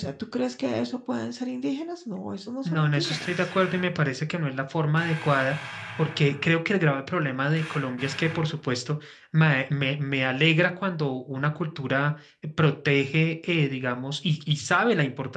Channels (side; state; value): both; identical; correlation 1.00